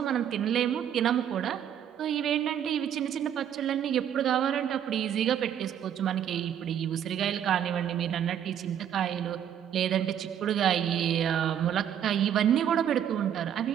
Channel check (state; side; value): quieter; left; 9.6 dB